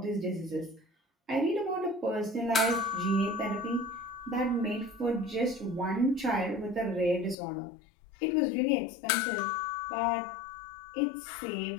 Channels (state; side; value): drops out; right; at 7.4 s